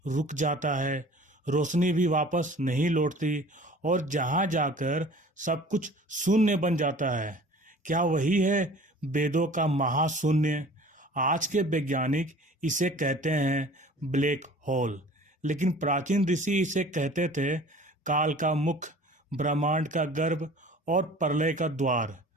रुक जाता है, रोशनी भी वापस नहीं लौटती और जहां जाकर सब कुछ शून्य बन जाता है, क्या वही है वेदों का महाशून्य? आज के वैज्ञानिक इसे कहते हैं ब्लैक होल, लेकिन प्राचीन ऋषि इसे कहते थे काल का मुख, ब्रह्मांड का गर्भ और प्रलय का द्वार।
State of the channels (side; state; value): both; normal; correlation 0.46